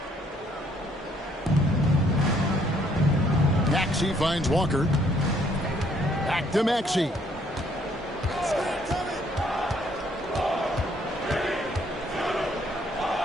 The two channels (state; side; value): normal; both; correlation 0.66